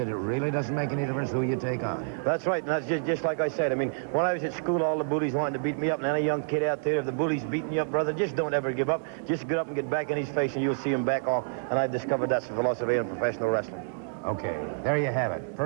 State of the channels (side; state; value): left; silent; digital silence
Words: it really doesn't make any difference who you take on. That's right, and that's just like I said. I mean, when I was at school, all the bullies wanted to beat me up, and any young kid out there, if the bully's beating you up, brother, just don't ever give up. Just get up and get back in his face, and you'll see him back off. And I've discovered that's the philosophy in professional wrestling. Okay, there you have it.